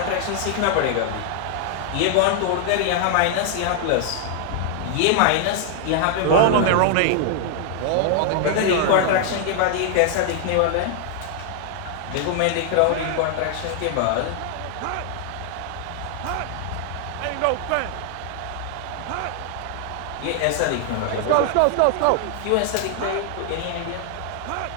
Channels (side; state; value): both; different; correlation 0.00